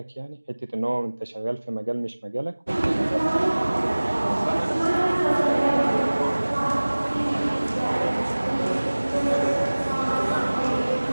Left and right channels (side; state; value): both; inverted; correlation -1.00